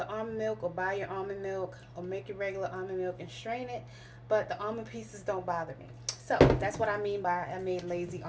almond milk or buy your almond milk or make your regular almond milk and strain it. But the almond pieces don't bother me. So that's what I mean by I made lazy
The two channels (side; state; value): both; identical; correlation 1.00